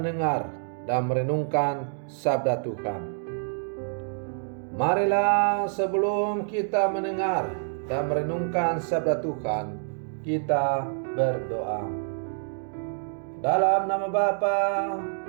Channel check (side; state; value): left; silent; 60 dB below the other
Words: dan merenungkan sabda Tuhan. Marilah sebelum kita mendengar dan merenungkan sabda Tuhan, kita berdoa. Dalam nama Bapa